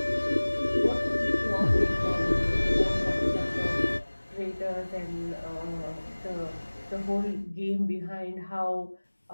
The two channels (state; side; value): inverted; both; correlation -1.00